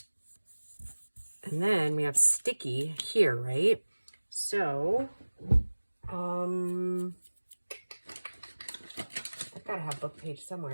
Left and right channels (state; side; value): inverted; both; correlation -1.00